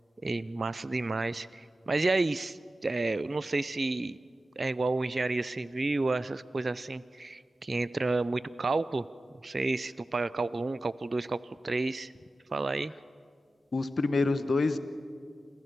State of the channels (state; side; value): normal; both; correlation 0.94